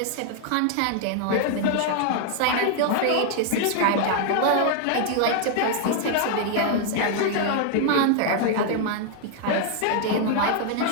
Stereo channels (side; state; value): both; different; correlation 0.00